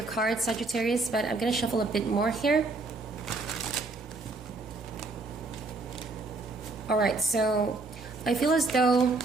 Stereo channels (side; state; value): left; quieter; 3.5 dB